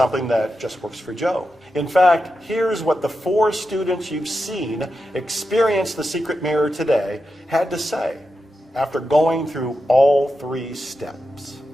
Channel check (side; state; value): both; normal; correlation 0.89